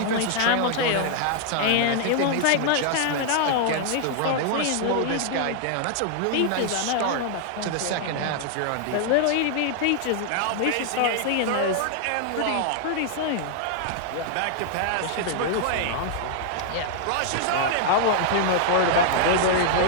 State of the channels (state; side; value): different; both; correlation -0.01